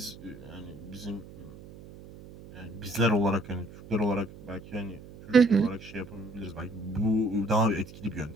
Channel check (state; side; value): noise; right; hum, 17 dB below the sound